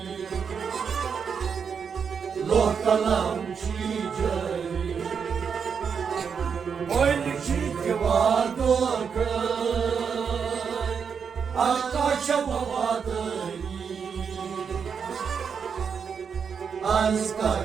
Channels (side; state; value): left; quieter; 6.5 dB